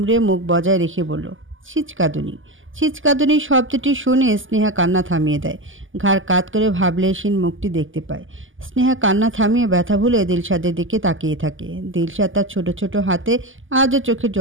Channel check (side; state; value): left; late; 0.58 ms